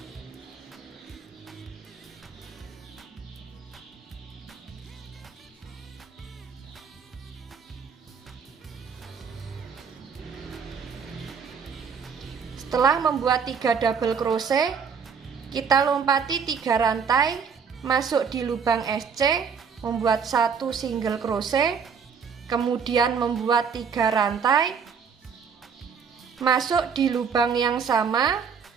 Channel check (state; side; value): quieter; left; 6.4 dB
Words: Setelah membuat 3 double crochet, kita lompati 3 rantai, masuk di lubang SC, membuat 1 single crochet, kemudian membuat 3 rantai, masuk di lubang yang sama,